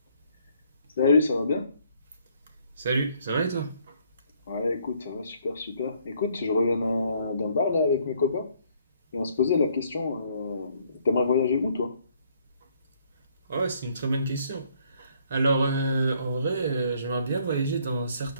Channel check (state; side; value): inverted; both; correlation -0.65